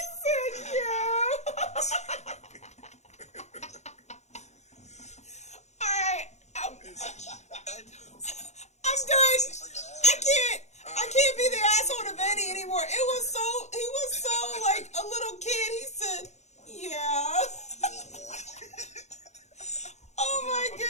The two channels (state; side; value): late; right; 0.33 ms